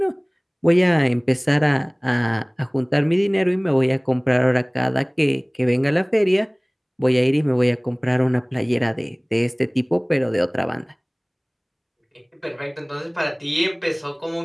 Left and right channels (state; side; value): identical; both; correlation 1.00